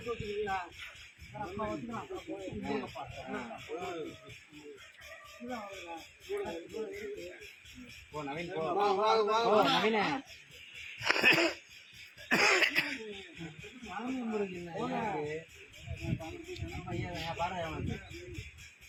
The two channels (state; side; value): identical; both; correlation 1.00